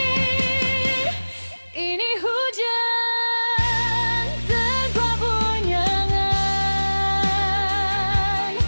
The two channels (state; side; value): inverted; both; correlation -1.00